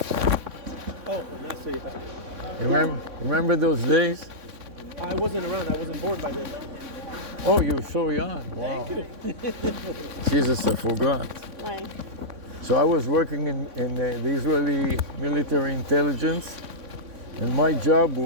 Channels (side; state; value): left; late; 3.6 ms